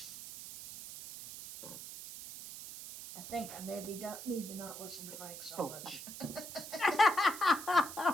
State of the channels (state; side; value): noise; right; hiss, 11 dB below the sound